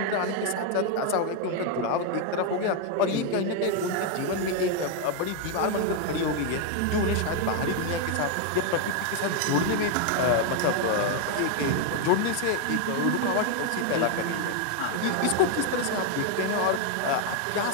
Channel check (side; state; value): both; different; correlation 0.01